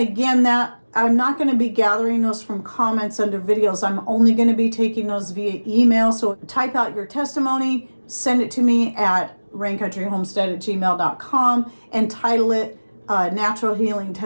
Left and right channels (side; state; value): both; inverted; correlation -1.00